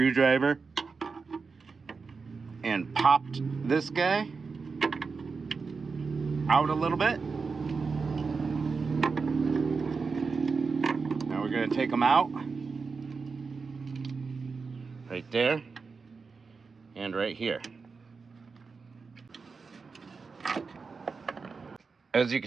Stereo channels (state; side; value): quieter; left; 4.8 dB